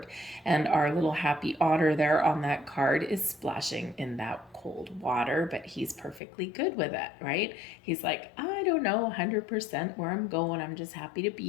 And our little happy otter there on that card is splashing in that cold water, but he's perfectly good with it, right? He's like, I don't know 100% where I'm going. I'm just happy to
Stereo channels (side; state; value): right; drops out; at 6.2 s